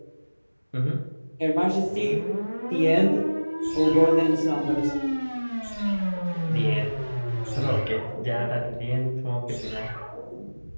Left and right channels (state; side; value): inverted; both; correlation -1.00